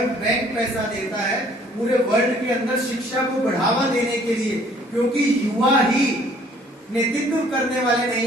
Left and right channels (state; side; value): normal; both; correlation 0.58